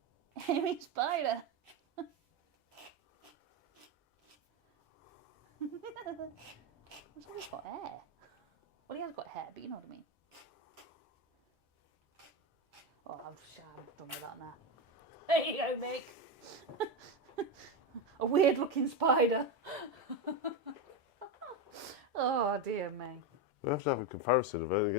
Hairy spider. Looks like he's got hair. Well, he has got hair, but you know what I mean. Oh, I'm done with that now. There you go, Mick. A weird looking spider. Oh, dear me. We have to have a comparison of it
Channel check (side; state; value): both; normal; correlation 0.12